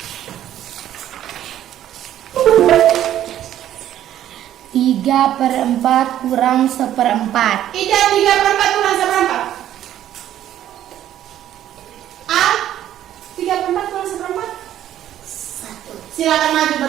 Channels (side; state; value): left; quieter; 11.8 dB